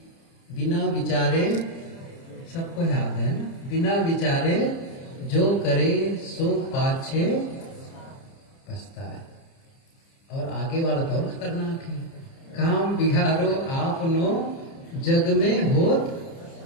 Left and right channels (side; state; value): right; late; 30 ms